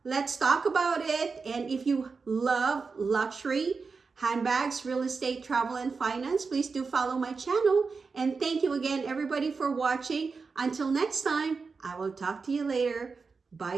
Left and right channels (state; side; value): quieter; left; 4.7 dB